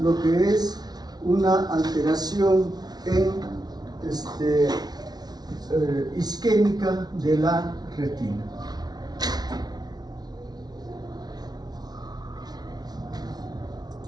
lo que es una alteración en isquémica de la retina.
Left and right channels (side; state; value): left; late; 0.19 ms